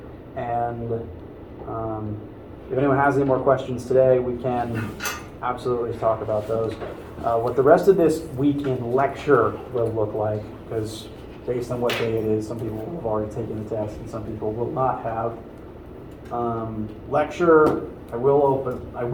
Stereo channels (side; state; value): both; identical; correlation 1.00